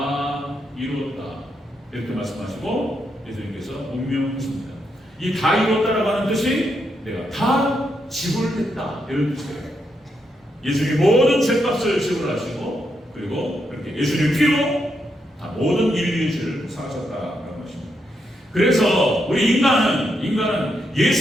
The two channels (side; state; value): both; normal; correlation 0.81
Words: 이루었다 이렇게 말씀하시고 예수님께서 운명하십니다. 이 다 이루었다라고 하는 뜻이 내가 다 지불했다 이런 뜻이에요. 예수님이 모든 죄값을 지불하시고 그리고 그렇게 예수님의 피로 다 모든 인류의 죄를 사하셨다라는 것입니다. 그래서 우리 인간은